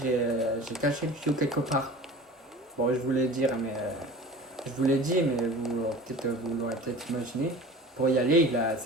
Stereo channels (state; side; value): normal; both; correlation 0.39